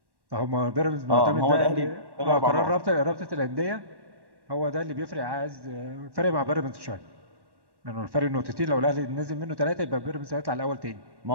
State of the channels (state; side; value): late; left; 1.1 ms